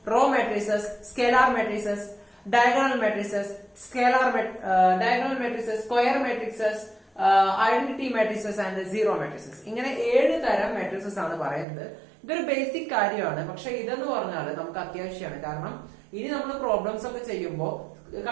row matrices, scalar matrices, diagonal matrices, diagonal matrices, square matrices, identity matrices and zero matrices. ഇങ്ങനെ 7 തരം മെട്രിസസ് ആണ് പറയുന്നത്. ഇതൊരു ബേസിക് കാര്യമാണ്, പക്ഷെ ഇതെന്ന് പറഞ്ഞാൽ നമുക്ക് അത്യാവശ്യമാണ്. കാരണം ഇനി നമ്മൾ പ്രോബ്ലംസ് ഒക്കെ ചെയ്യുമ്പോൾ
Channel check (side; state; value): left; drops out; at 11.7 s